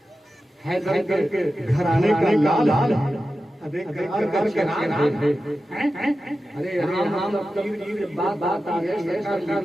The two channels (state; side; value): normal; both; correlation 0.93